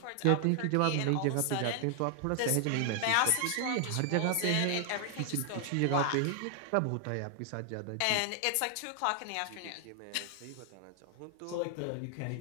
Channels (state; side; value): different; both; correlation 0.00